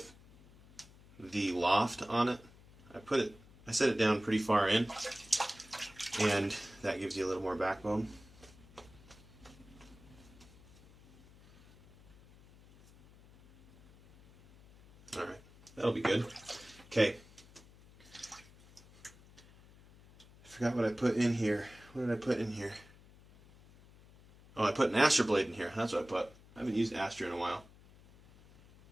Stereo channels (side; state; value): left; noise; hum, 23 dB below the sound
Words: the loft on it. I set it down pretty far in, and that gives you a little more backbone. Alright, that'll be good. Okay. I forgot what I put in here. What did I put in here? Oh, I put an Astra blade in here. That's what I put. I haven't used Astra in a while.